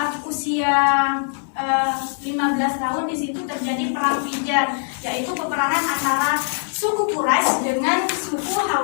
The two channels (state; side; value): silent; right; 58 dB below the other